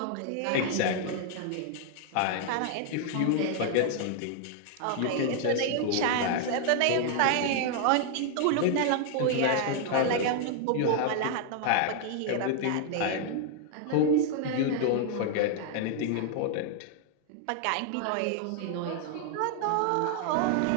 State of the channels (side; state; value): both; different; correlation 0.00